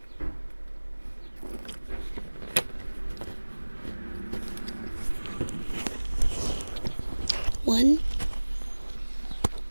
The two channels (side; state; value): both; inverted; correlation -1.00